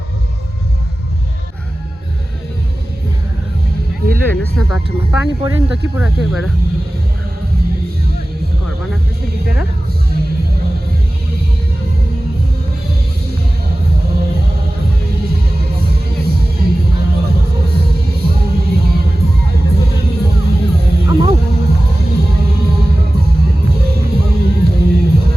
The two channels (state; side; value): normal; both; correlation 0.96